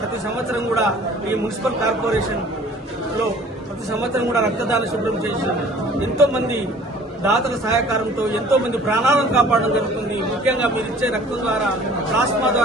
ప్రతి సంవత్సరం కూడా ఈ మున్సిపల్ కార్పొరేషన్ లో ప్రతి సంవత్సరం కూడా రక్తదాన శిబిరం చేసి ఎంతో మంది దాతల సహకారంతో ఎంతో మంది ప్రాణాలను కాపాడడం జరుగుతుంది. ముఖ్యంగా మీరు ఇచ్చే రక్తం ద్వారా, ప్లాస్మా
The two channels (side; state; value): both; normal; correlation 0.51